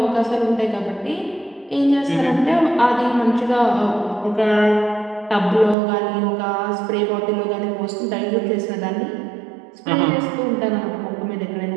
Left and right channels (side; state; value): left; drops out; at 5.8 s